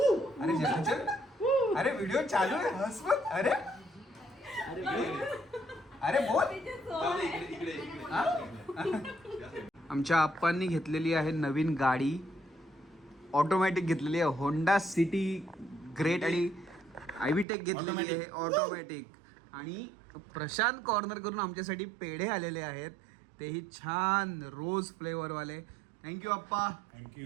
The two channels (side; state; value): left; drops out; at 17.4 s